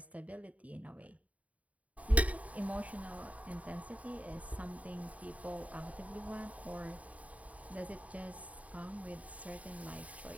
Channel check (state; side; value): late; left; 0.069 ms